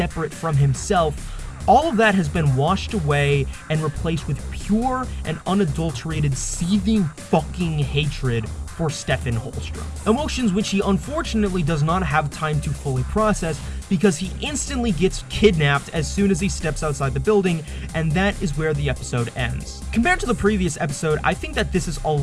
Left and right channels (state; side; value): identical; both; correlation 1.00